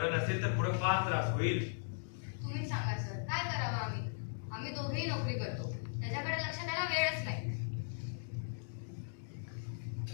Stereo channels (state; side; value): silent; right; digital silence